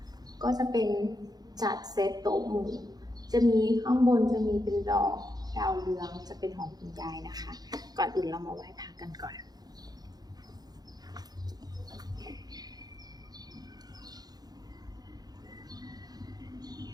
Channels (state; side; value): late; left; 0.19 ms